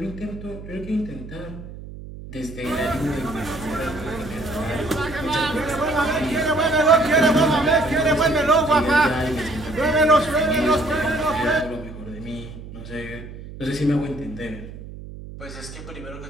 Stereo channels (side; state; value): right; noise; hum, 13 dB below the sound